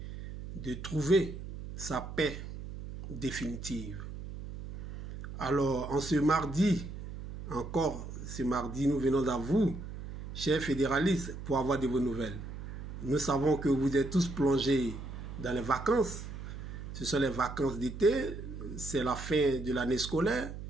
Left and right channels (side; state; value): right; noise; hum, 9 dB below the sound